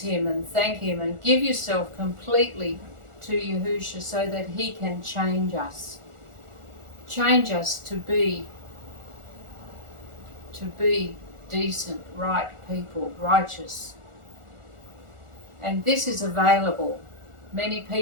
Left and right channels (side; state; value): left; late; 1.4 ms